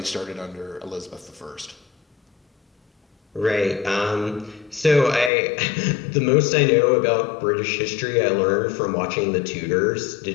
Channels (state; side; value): drops out; right; at 5.3 s